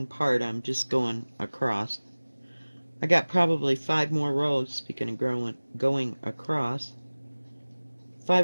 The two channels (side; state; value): both; inverted; correlation -1.00